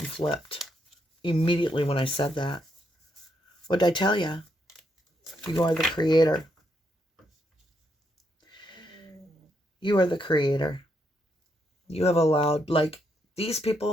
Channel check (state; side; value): normal; both; correlation 0.78